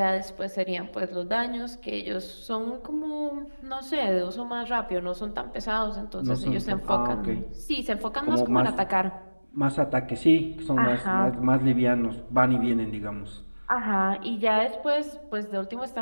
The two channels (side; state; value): both; inverted; correlation -1.00